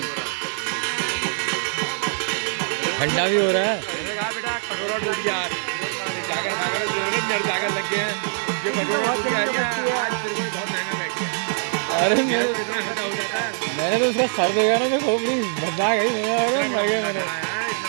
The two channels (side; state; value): left; silent; digital silence